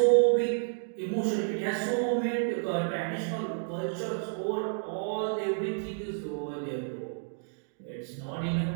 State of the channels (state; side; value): silent; left; digital silence